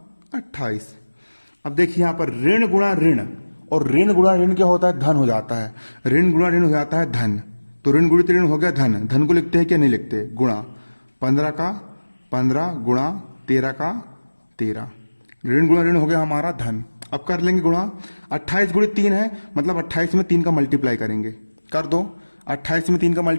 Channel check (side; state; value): both; inverted; correlation -1.00